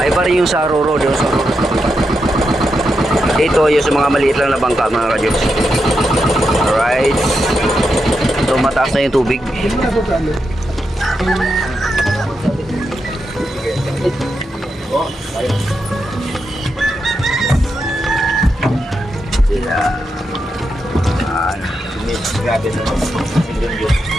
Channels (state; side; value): normal; both; correlation 0.85